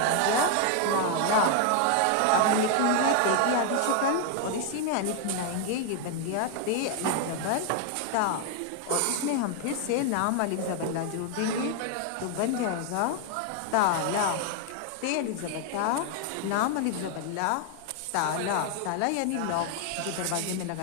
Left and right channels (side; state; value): both; different; correlation 0.00